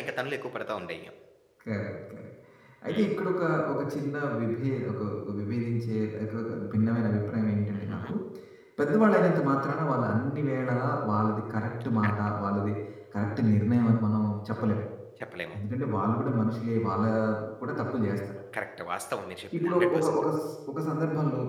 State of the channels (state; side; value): identical; both; correlation 1.00